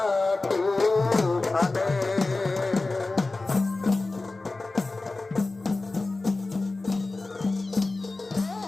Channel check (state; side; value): quieter; right; 3.3 dB